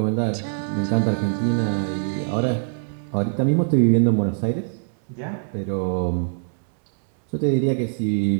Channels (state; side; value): silent; left; digital silence